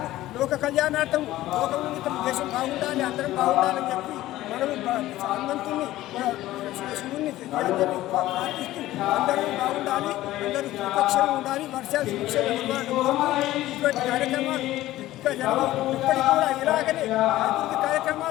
లోక కళ్యాణార్థం, లోకమునితం, దేశం బాగుండాలి, అందరం బాగుండాలని చెప్పి మనము హనుమంతుని, శివుని ప్రార్థిస్తూ అందరూ బాగుండాలి, అందరూ సురక్షగా ఉండాలి, వర్షాలు సురక్షగా ఇటువంటి కార్యక్రమాలు ఇంకా ఇప్పటికి కూడా ఇలాగనే అభివృద్ధి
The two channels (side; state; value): right; quieter; 15.6 dB